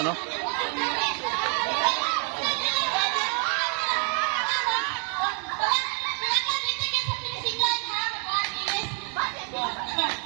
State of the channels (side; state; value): left; quieter; 38.9 dB